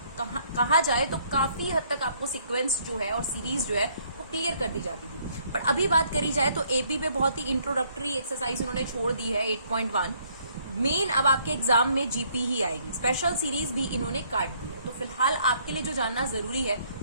कहा जाए तो काफी हद तक आपको सिक्वेंस जो है और सीरीज जो है वो क्लियर कर दी जाती थी। पर अभी बात करी जाए तो एपी पे बहुत ही इंट्रोडक्टरी एक्सरसाइज उन्होंने छोड़ दी है 8.1। मेन अब आपके एग्जाम में जीपी ही आएगी, स्पेशल सीरीज भी इन्होंने काट दी है। तो फिलहाल आपके लिए जो जानना जरूरी है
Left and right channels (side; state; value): both; inverted; correlation -0.66